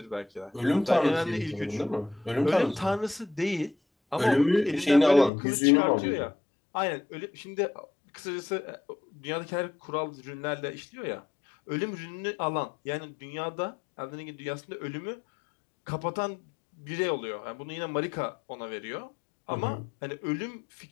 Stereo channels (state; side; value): drops out; right; at 5.3 s